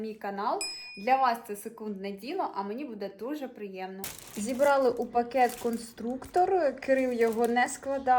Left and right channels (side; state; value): both; identical; correlation 1.00